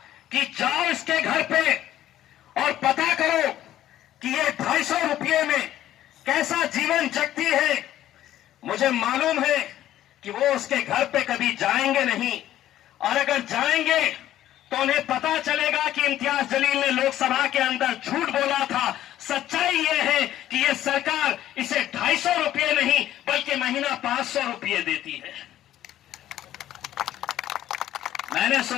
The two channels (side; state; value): right; quieter; 12.8 dB